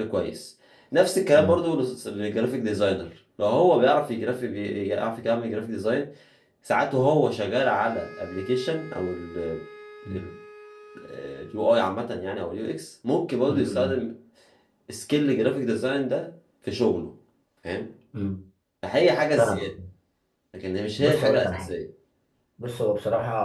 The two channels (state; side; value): identical; both; correlation 1.00